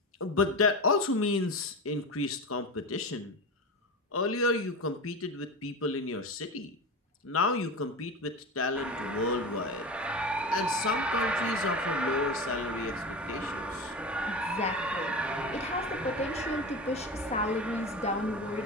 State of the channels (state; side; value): normal; both; correlation 0.25